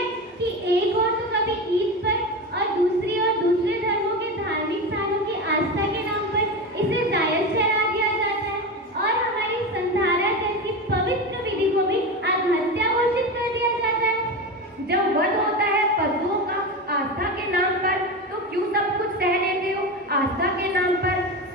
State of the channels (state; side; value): normal; both; correlation 0.22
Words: कि एक ओर तो कभी ईद पर और दूसरी ओर दूसरे धर्मों के धार्मिक स्थानों की आस्था के नाम पर इसे जायज ठहरा दिया जाता है और हमारी संधारा जैसी पवित्र विधि को भी आत्महत्या घोषित कर दिया जाता है। जब वध होता है पशुओं का आस्था के नाम पर, तो क्यों सब कुछ सह लेते हो? आस्था के नाम पर